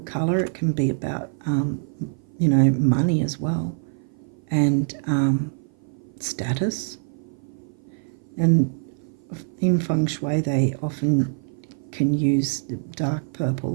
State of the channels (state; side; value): silent; left; 56 dB below the other